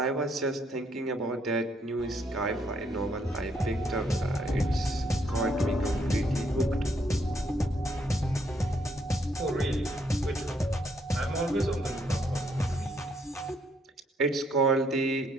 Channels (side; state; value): both; normal; correlation 0.71